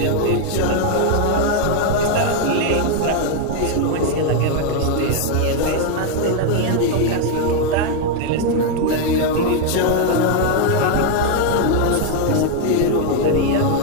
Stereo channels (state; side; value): different; both; correlation 0.00